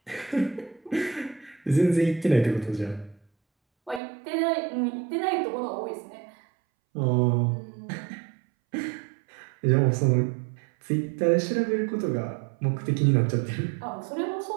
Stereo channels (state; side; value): drops out; left; at 4.0 s